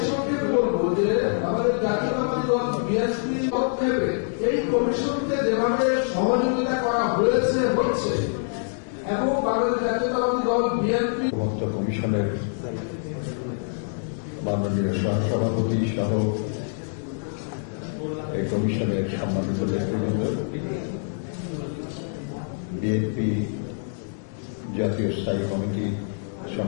সংক্ষেপে বলবো যে আমাদের জাতীয়তাবাদী দল বিএনপি পদক্ষেপে এই কমিশনকে যেভাবে সহযোগিতা করা হয়েছে হচ্ছে এবং বাংলাদেশ জাতীয়তাবাদী দল বিএনপি কমিশনের মাননীয় সভাপতি সহ এই কমিশনের সম্মানিত নেতৃবৃন্দ, বিএনপি জাতীয় স্থায়ী কমিটি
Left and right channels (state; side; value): silent; right; digital silence